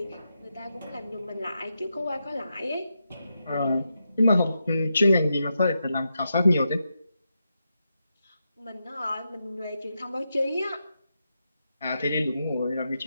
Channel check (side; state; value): both; inverted; correlation -0.86